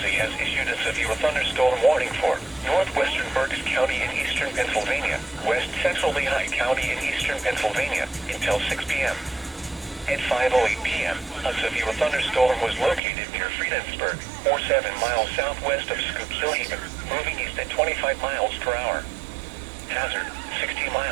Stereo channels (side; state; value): left; drops out; at 13.0 s